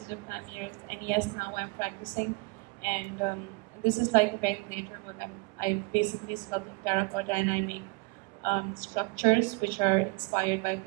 of time years. And yes, now I'm practicing. And this is like a ventilator work. I basically sculpt in terracotta and I make structures which are inspired by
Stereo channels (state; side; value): quieter; left; 27.7 dB